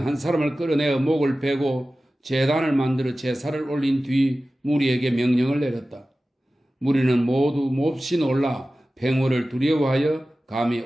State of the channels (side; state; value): both; normal; correlation 0.96